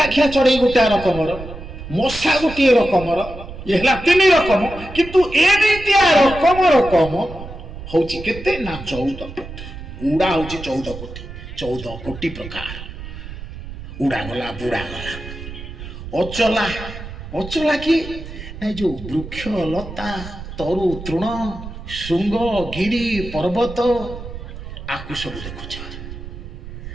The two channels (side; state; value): right; noise; rumble, 11 dB below the sound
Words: ଚଢ଼େଇ ଗୋଟାଏ ରକମର, ମଶା ଗୋଟିଏ ରକମର। ଇଏ ହେଲା 3 ରକମ, କିନ୍ତୁ ଏମିତିଆ ରକମ ହଉଛି କେତେ ନା 14 କୋଟି। ଉଡ଼ା ହଉଛି 14 କୋଟି। 14 କୋଟି ପ୍ରକାର। ଉଡ଼ା ଗଲା, ବୁଡ଼ା ଗଲା। ଅଚଲା ଅଚଲା କି ନାଇଁ ଯୋଉ ବୃକ୍ଷ ଲତା ତରୁ ତୃଣ ଶୃଙ୍ଗ ଗିରି ପର୍ବତ ଆକୁ ସବୁ ଦେଖୁଛ।